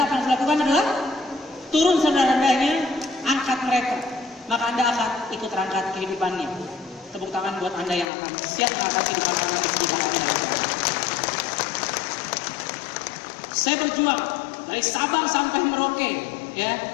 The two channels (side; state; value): right; drops out; at 8.1 s